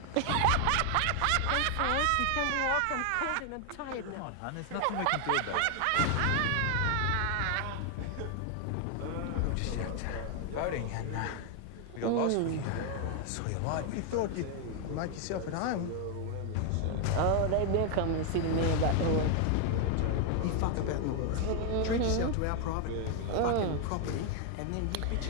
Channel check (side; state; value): both; different; correlation 0.00